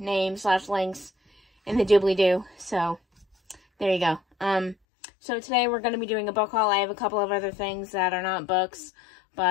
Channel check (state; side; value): drops out; right; at 4.8 s